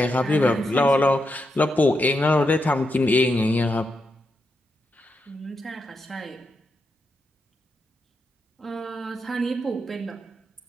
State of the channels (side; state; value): both; normal; correlation 0.84